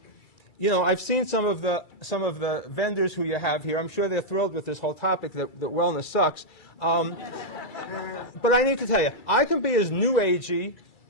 You know, I've seen some of the vendors who you have here. I'm sure they're thrilled with this whole topic that wellness sucks. But I need to tell you, I can be as new agey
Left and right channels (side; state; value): right; late; 2.3 ms